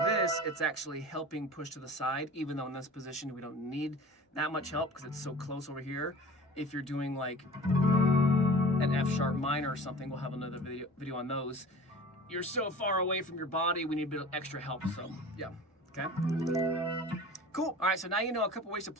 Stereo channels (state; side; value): normal; both; correlation 0.41